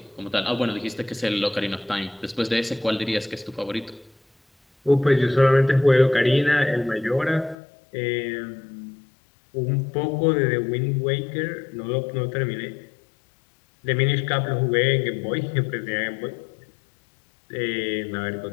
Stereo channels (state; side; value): drops out; right; at 7.6 s